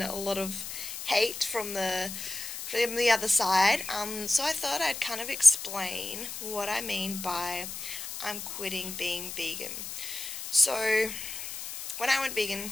a lot of hate from the other side. So I thought I'd kind of explain what I mean by I'm quitting being vegan. So when I went vegan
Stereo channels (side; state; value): left; noise; hiss, 8 dB below the sound